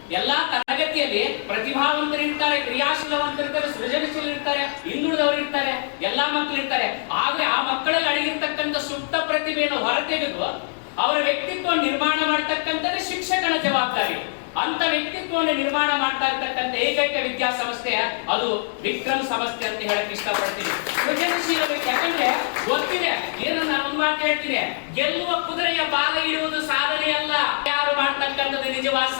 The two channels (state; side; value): silent; right; digital silence